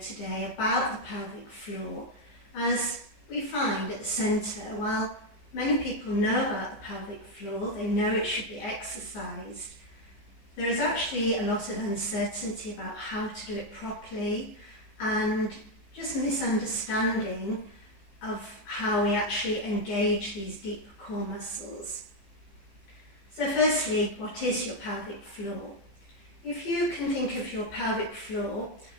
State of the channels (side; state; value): right; late; 14 ms